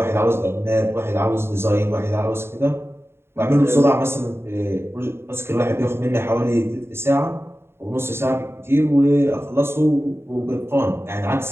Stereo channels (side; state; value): left; late; 0.12 ms